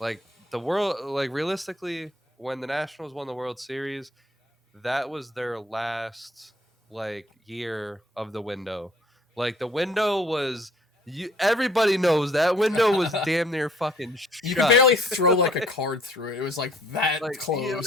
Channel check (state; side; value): normal; both; correlation 0.59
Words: the world, like realistically, when the Nationals won the World Series, that was their last like year of the window. Like the window was everybody knows that window was damn near fucking You could shut. barely throw like a like, card through it. It was like that like